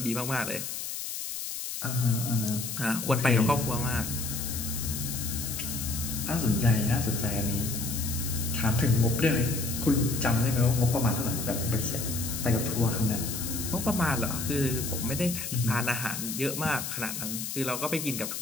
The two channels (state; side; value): noise; left; hiss, 5 dB below the sound